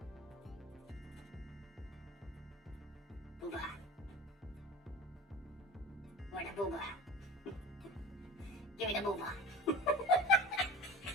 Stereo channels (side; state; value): both; normal; correlation 0.35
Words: Booba. Where the booba? Give me the booba.